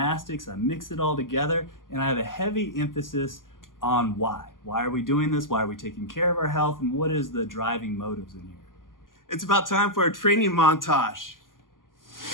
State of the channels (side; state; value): right; late; 0.90 ms